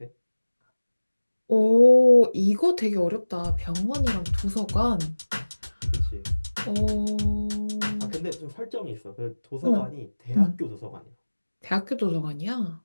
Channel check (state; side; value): inverted; both; correlation -1.00